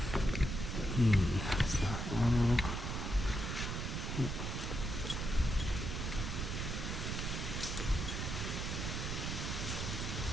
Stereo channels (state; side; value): noise; right; rumble, 3 dB below the sound